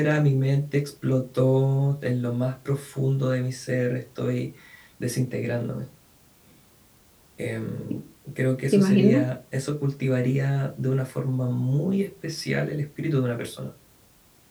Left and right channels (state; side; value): identical; both; correlation 1.00